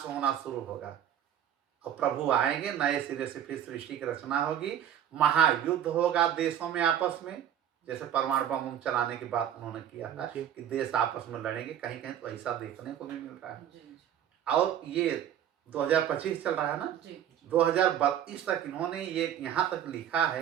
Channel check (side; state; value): left; quieter; 10.1 dB